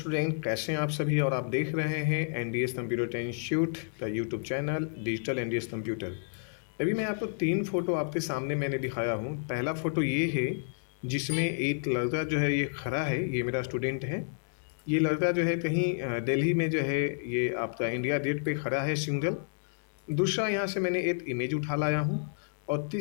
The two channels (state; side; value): silent; right; 58 dB below the other